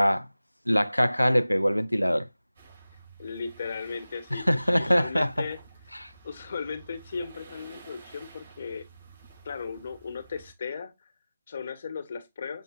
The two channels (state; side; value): inverted; both; correlation -0.97